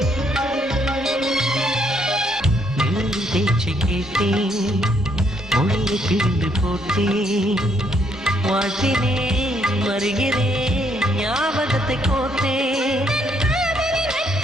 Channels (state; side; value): normal; both; correlation 0.71